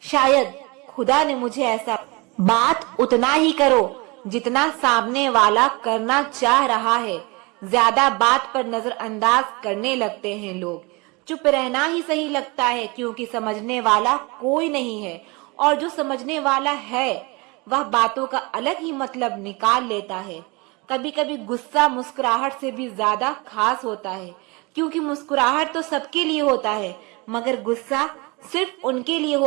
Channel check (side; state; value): left; quieter; 26.7 dB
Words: शायद खुदा ने मुझे ऐसा। बात उतना ही करो जितना सामने वाला करना चाह रहा है। ज्यादा बात पर नजरअंदाज करने लगते हैं लोग। चुप रहना ही सही लगता है, क्योंकि समझने वाला कोई नहीं है और जो समझने वाला है वह बातों का अलग ही मतलब निकाल लेता है। कभी कभी गुस्सा मुस्कुराहट से भी ज्यादा खास होता है, क्योंकि मुस्कुराहट तो सबके लिए होता है मगर गुस्सा सिर्फ उनके लिए